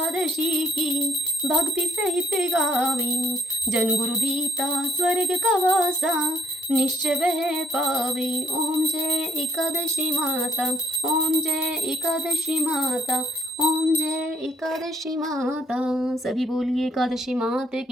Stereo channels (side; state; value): both; normal; correlation 0.68